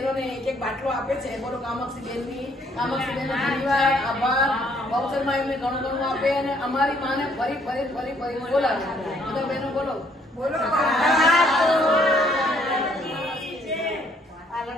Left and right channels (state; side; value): normal; both; correlation 0.65